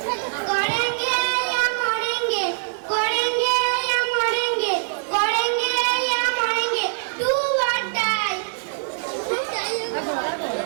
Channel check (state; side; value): silent; left; digital silence